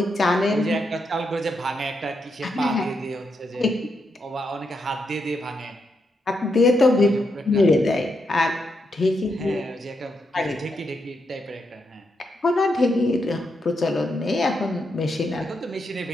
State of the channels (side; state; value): both; normal; correlation 0.82